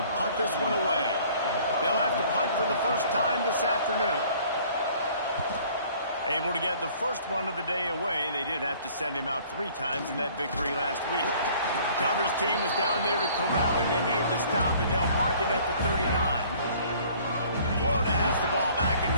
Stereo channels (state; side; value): inverted; both; correlation -0.54